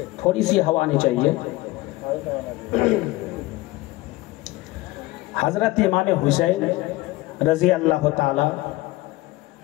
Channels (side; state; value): right; quieter; 19.5 dB